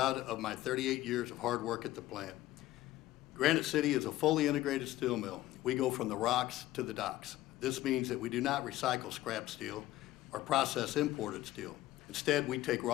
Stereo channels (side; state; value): right; quieter; 15.7 dB